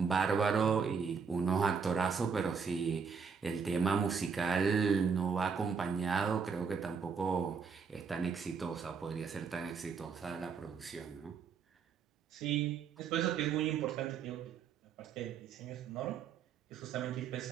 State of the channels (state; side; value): quieter; left; 6.0 dB